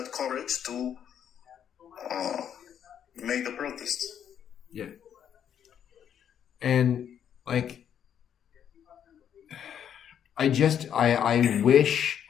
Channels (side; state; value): right; quieter; 9.0 dB